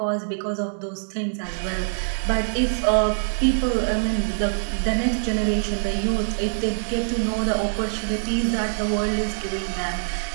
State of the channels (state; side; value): silent; left; digital silence